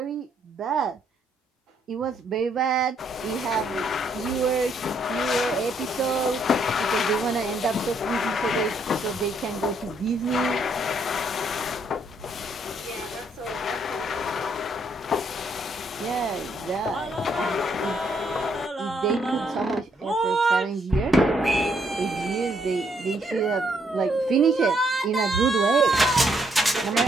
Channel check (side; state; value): both; normal; correlation 0.71